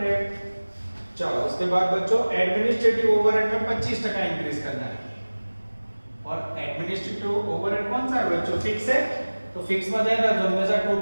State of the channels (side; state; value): both; inverted; correlation -1.00